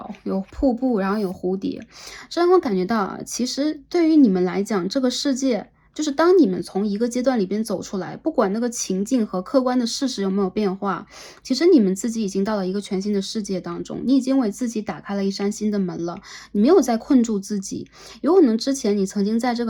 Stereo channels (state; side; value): identical; both; correlation 1.00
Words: 有瀑布，然后有蝴蝶。这让我感觉到啊，其实对于你们来讲，这个世界就是当你们从一个阶段里边走出来，不管那个情境和客观的事实有没有变化，其实你们自己已经到了一个全新的世界当中，你已经为自己打开了一扇新的门了，你没有再困住自己。有可能之前你曾经在这